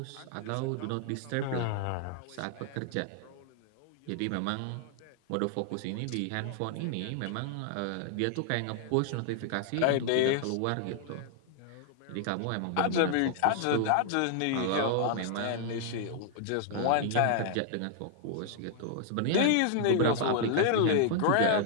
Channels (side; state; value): both; different; correlation -0.01